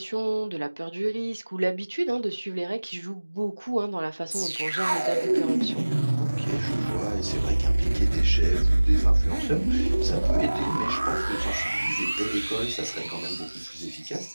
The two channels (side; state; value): both; inverted; correlation -1.00